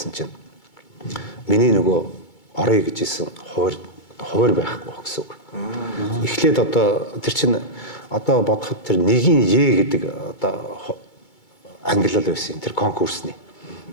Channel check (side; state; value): right; late; 2.2 ms